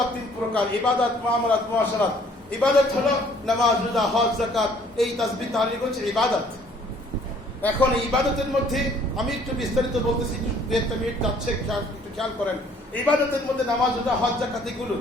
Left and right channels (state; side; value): normal; both; correlation 0.59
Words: 3 প্রকার, ইবাদত, মুআমালাত, মুআশারাত। ইবাদত হলো নামাজ, রোজা, হজ, যাকাত, এই তাসবিহ তাহলিল হচ্ছে ইবাদত। এখন ইবাদতের মধ্যে আমি একটু বিস্তারিত বলতেছি, 2-1 মিনিট যাচ্ছে, একটু খেয়াল করেন। ইবাদতের মধ্যে নামাজ, রোজা, হজ, যাকাত,